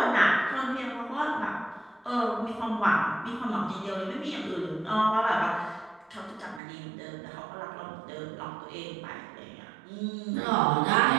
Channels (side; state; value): left; drops out; at 6.6 s